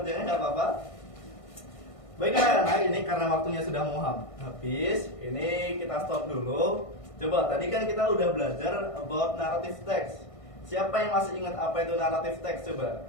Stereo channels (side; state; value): right; late; 1.6 ms